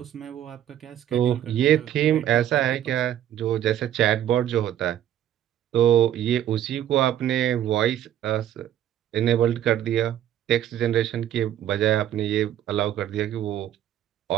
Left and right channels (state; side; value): quieter; left; 11.2 dB